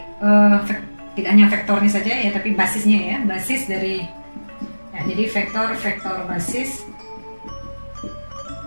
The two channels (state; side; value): inverted; both; correlation -1.00